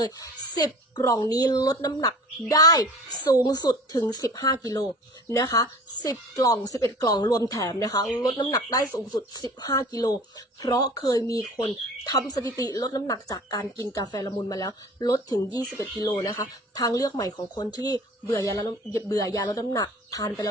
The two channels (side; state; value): both; normal; correlation 0.44